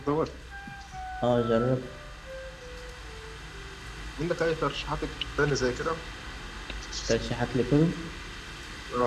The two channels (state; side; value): identical; both; correlation 1.00